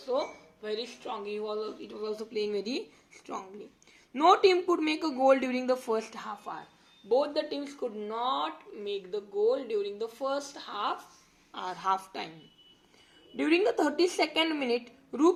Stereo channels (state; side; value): identical; both; correlation 1.00